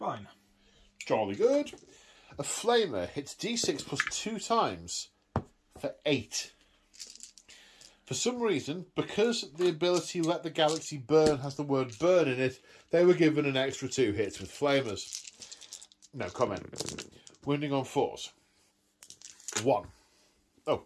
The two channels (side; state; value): both; identical; correlation 1.00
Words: Jolly good. A flamer hits D6 plus 2 times for 8. For some reason, because the ability Let the Galaxy Burn has the word burn in it, they were given an extra 2 hits with flamers. No comment. Wounding on 4s. 1. Oh,